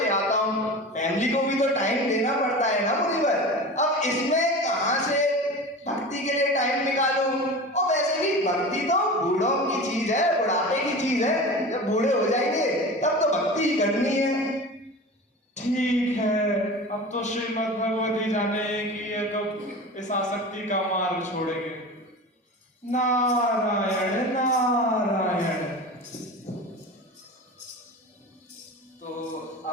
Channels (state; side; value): normal; both; correlation 0.32